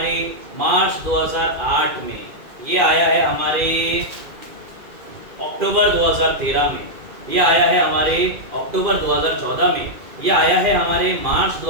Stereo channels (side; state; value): left; late; 2.4 ms